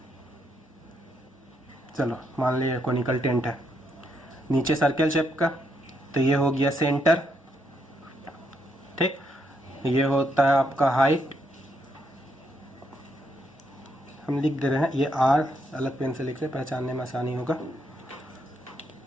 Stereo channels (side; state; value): both; normal; correlation 0.77